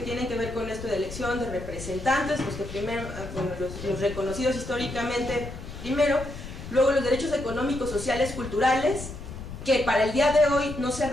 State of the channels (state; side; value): noise; left; rumble, 10 dB below the sound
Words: tienen que ver con esto de elección de representantes, los que primero, bueno, los reconocidos históricamente primero, luego los derechos económicos, sociales, culturales, que para el día de hoy no se ha